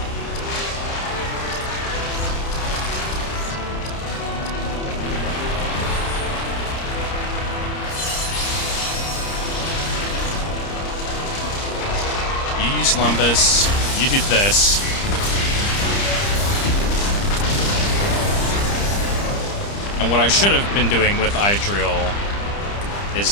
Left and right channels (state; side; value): late; right; 30 ms